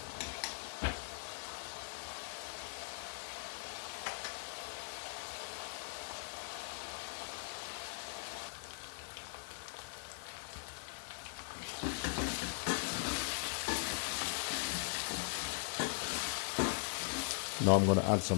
Now I'm going to add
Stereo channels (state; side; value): silent; right; 51 dB below the other